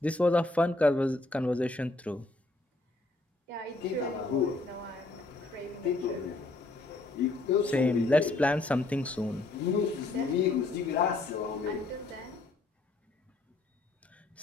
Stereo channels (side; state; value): right; quieter; 3.2 dB